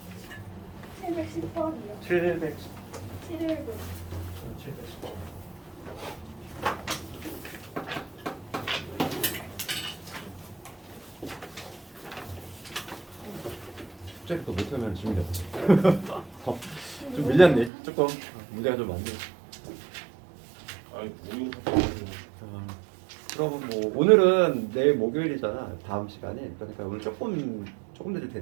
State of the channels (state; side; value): drops out; left; at 17.7 s